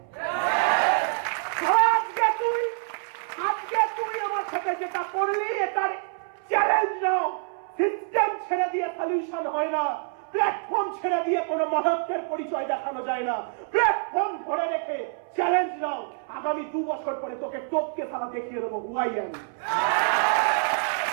আজকে তুই আমার সাথে যেটা করলি, এটার চ্যালেঞ্জ নাও। সিস্টেম ছেড়ে দিয়ে সলিউশন হয় না, প্ল্যাটফর্ম ছেড়ে দিয়ে কোনো মহত্বের পরিচয় দেখানো যায় না। প্ল্যাটফর্ম ধরে রেখে চ্যালেঞ্জ নাও। আগামী 2 বছর পরে তোকে টপকে তারা দেখিয়ে দেবো হুয়াই আমি।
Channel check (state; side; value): silent; left; 61 dB below the other